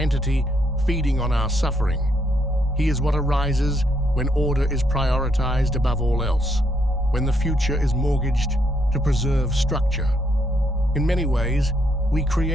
feeding on our suffering. He is what arises when order is prioritized above all else, when the future is mortgaged to preserve structure. In many ways, we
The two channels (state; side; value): normal; both; correlation 0.74